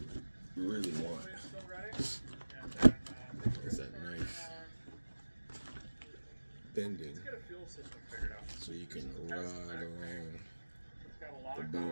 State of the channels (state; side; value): inverted; both; correlation -1.00